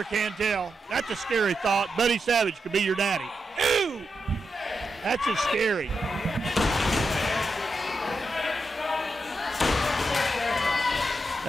can tell. That's a scary thought. Buddy Savage could be your daddy. Ooh! That's just scary.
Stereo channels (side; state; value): both; normal; correlation 0.86